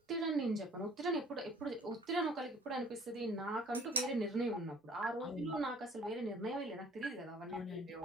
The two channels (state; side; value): normal; both; correlation 0.52